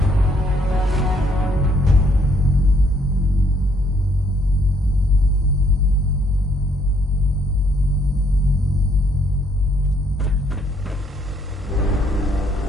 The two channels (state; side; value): normal; both; correlation 0.68